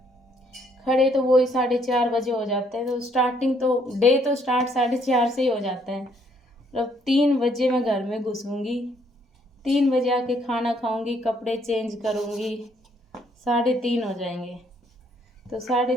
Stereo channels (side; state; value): both; normal; correlation 0.67